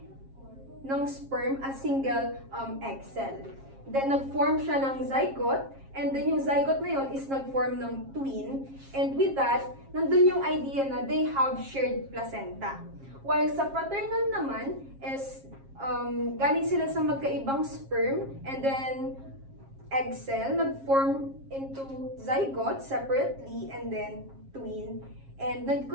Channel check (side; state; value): left; late; 7.4 ms